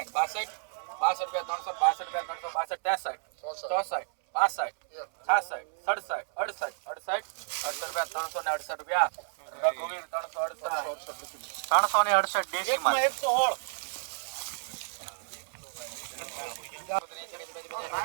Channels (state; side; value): silent; left; 57 dB below the other